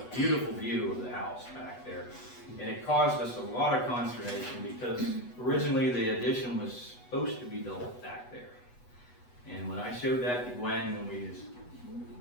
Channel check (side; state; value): right; late; 8.1 ms